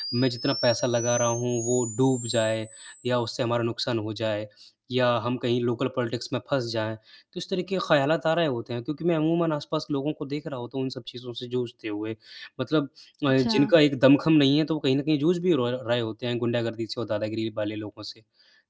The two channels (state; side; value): identical; both; correlation 1.00